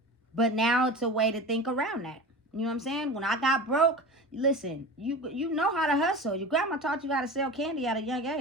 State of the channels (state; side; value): normal; both; correlation 0.32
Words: But now it's a way to think around that. You know what I'm saying? When I got broke, listen, you know how to hustle. Your grandma taught you how to sell candy at a young